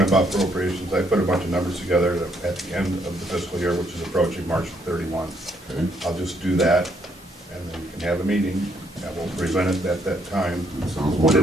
about appropriations. I put a bunch of numbers together at the end of the fiscal year, which is approaching March 31. Okay. I'll just do that, and then you can have a meeting, and we'll present it at that time. Sounds What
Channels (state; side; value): normal; both; correlation 0.71